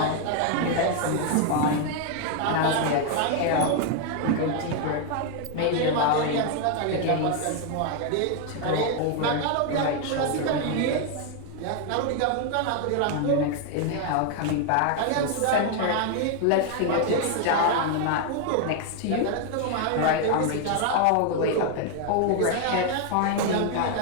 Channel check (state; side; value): different; both; correlation 0.01